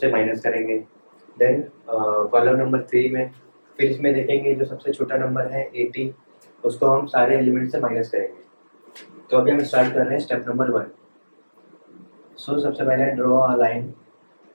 माइनस करेंगे। देन कॉलम नंबर 3 में फिर इसमें देखेंगे जो सबसे छोटा नंबर है 80, उसको हम सारे एलिमेंट से माइनस करेंगे। तो अभी हम स्टार्ट कर रहे हैं स्टेप नंबर 1। सो सबसे पहले draw a line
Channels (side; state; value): both; inverted; correlation -1.00